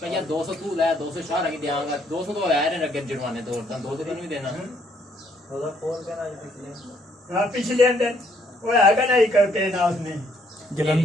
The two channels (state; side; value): normal; both; correlation 0.68